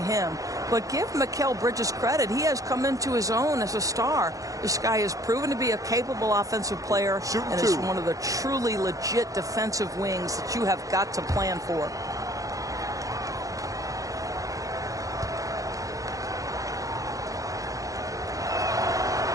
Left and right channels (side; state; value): left; late; 0.16 ms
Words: him. But give Mikal Bridges credit. He has come into his own as a star. This guy has proven to be a capable offensive player and is one of the truly legit defensive wings that you have got to plan for.